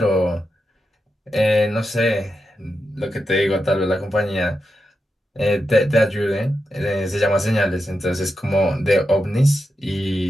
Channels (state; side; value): normal; both; correlation 0.88